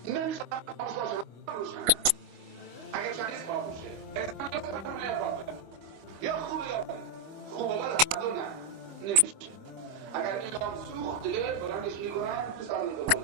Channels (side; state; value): left; late; 25 ms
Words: نمیشه خاموش باشه روشنه. اگر چندیز خاموشه انسان یا سرمونه یا باطل، یا خوبه یا بده. خوبه بده هر نه نمیشه. اگر ایران سوخت دیگه بلندش میکنن تو سر